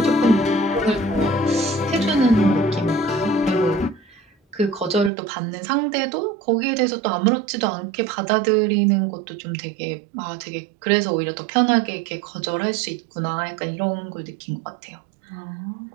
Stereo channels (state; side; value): drops out; left; at 5.1 s